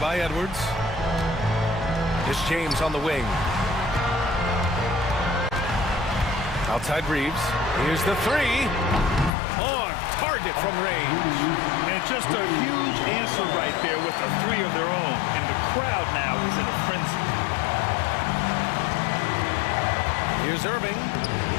by Edwards. It's James on the wing. Outside Reeves. Here's the 3. On target from range. And just a huge answer right there with a 3 of their own. And the crowd now is in a frenzy. Here's Irving.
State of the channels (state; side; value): drops out; right; at 9.3 s